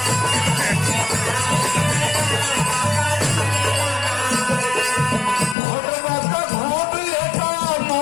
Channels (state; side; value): drops out; right; at 5.6 s